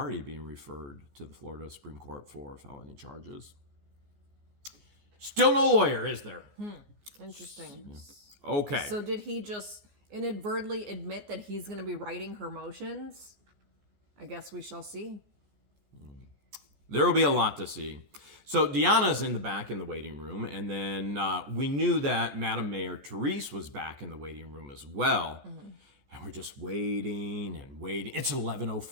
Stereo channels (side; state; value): left; late; 14 ms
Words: being referred to the Florida Supreme Court for felony charges. Still no lawyer, is there? Interesting. Yeah. Okay. So did he just inadvertently admit that he's going to be writing her motions? I guess we shall see. There will be a lot to see. So Deanna's in the back in the waiting room, and then we knew that Madam Mayor Therese was back in the waiting room as well. And we're just waiting and waiting. It's